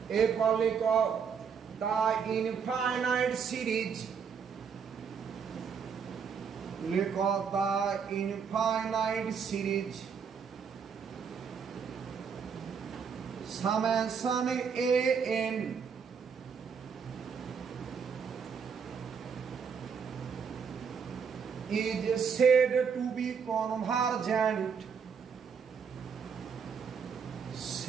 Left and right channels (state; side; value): quieter; left; 6.5 dB